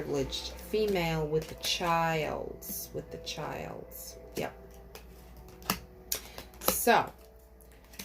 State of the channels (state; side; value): identical; both; correlation 1.00